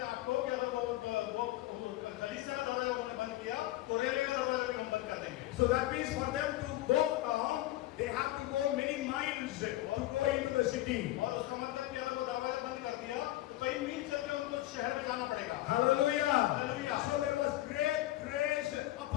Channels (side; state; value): right; quieter; 16.1 dB